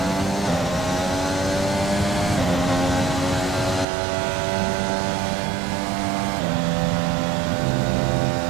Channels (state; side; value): drops out; left; at 3.9 s